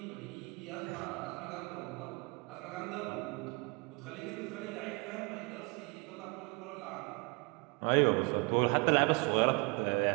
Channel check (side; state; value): left; quieter; 29.6 dB